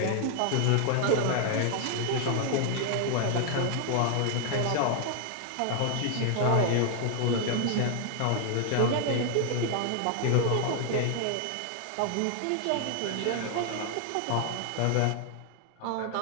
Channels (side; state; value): both; different; correlation 0.00